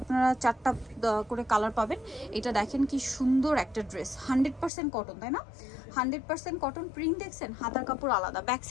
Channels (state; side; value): drops out; right; at 4.7 s